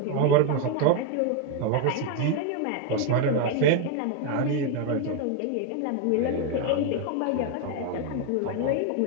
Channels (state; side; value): different; both; correlation 0.01